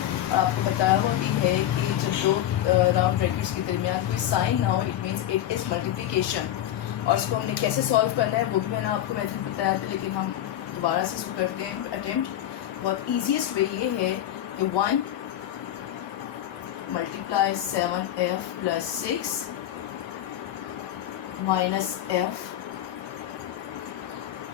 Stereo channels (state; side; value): quieter; right; 12.2 dB